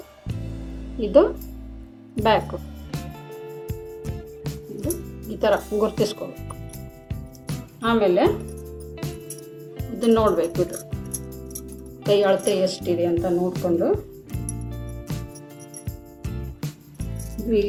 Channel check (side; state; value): both; identical; correlation 1.00